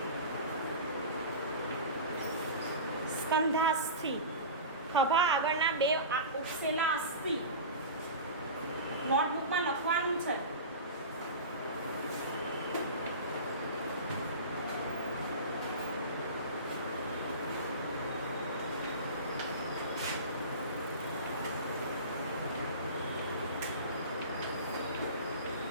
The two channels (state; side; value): inverted; both; correlation -0.31